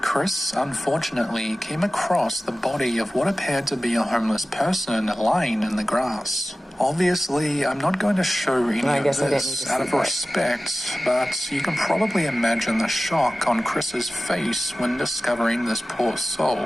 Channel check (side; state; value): both; normal; correlation 0.96